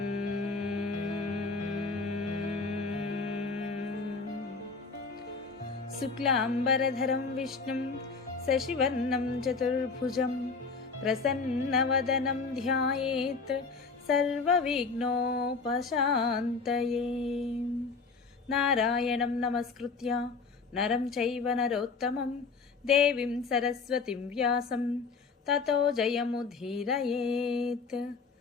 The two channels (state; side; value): quieter; right; 4.6 dB